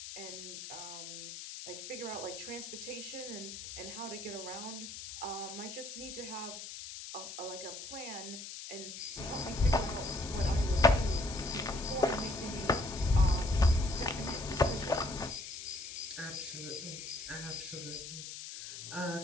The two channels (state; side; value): noise; left; hiss, 9 dB below the sound